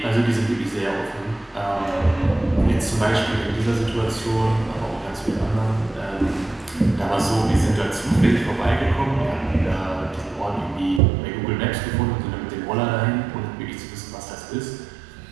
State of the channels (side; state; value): left; drops out; at 11.0 s